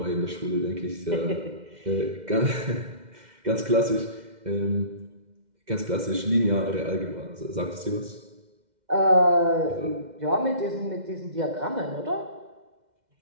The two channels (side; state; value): left; late; 2.1 ms